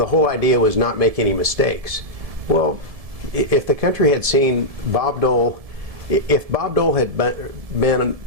whole idea was not make any mistakes. Well, if the country had seen Bob Dole, if Bob Dole had been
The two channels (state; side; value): late; left; 1.7 ms